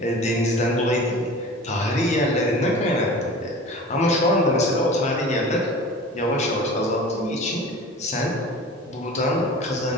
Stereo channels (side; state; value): both; normal; correlation 0.39